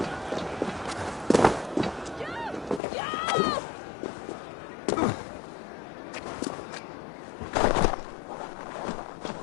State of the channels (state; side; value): drops out; right; at 2.8 s